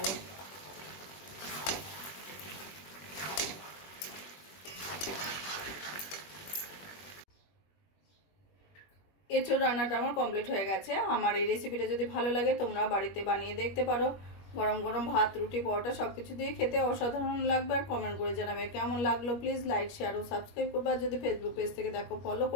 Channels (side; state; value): right; late; 21 ms